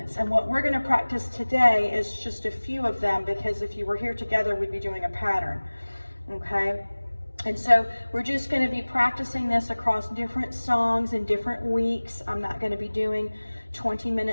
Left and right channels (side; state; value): both; inverted; correlation -1.00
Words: And what we're going to practice today is just a few of them, because if you were here together, we'd be doing a pattern. Okay? And so we're just going to be practicing this across different songs in different weeks. I'm not going to be doing 20